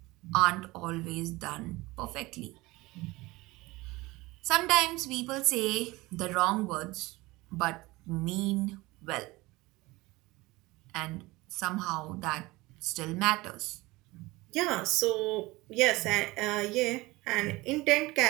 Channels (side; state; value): left; quieter; 21.3 dB